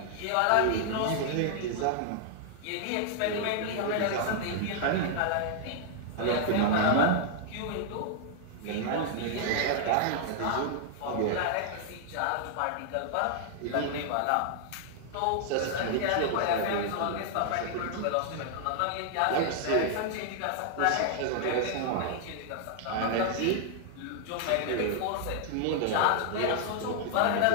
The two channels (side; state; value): both; different; correlation 0.00